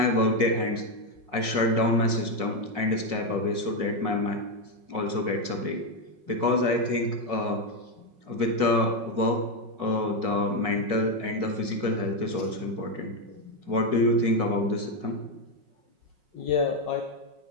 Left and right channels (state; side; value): late; left; 5.5 ms